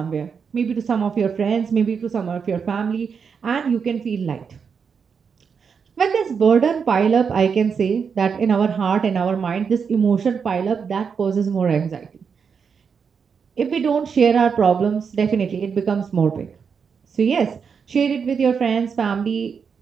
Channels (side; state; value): left; quieter; 6.2 dB